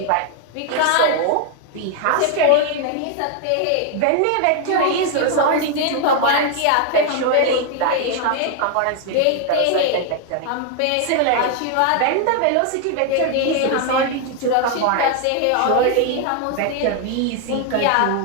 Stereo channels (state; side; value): different; both; correlation 0.00